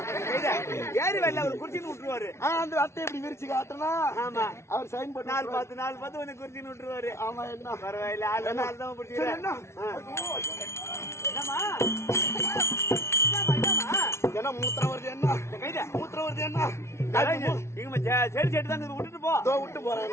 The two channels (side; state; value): right; late; 0.13 ms